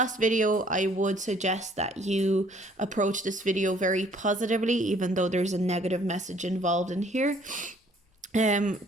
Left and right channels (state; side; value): normal; both; correlation 0.60